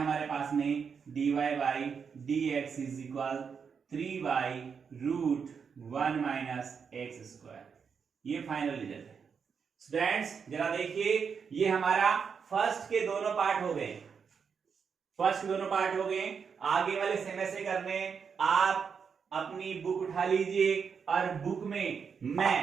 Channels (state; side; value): quieter; left; 6.3 dB